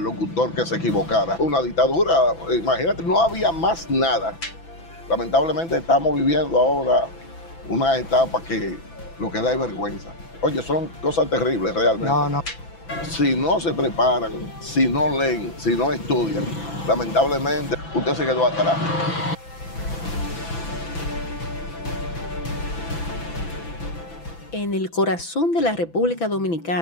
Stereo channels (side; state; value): right; late; 6.0 ms